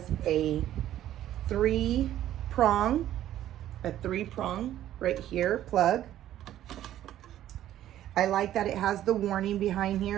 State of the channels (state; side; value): quieter; left; 12.5 dB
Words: a three-prong right here, plug. I like that it has the warning behind